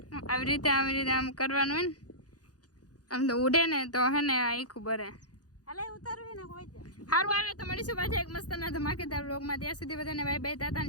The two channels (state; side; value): late; right; 0.68 ms